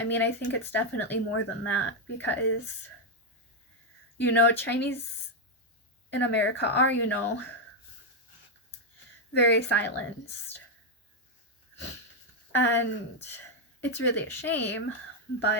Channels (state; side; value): normal; both; correlation 0.01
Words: mean, I think it's definitely more than that, because, you know, Chinese in America are, you know, very silenced. And it's really a shame,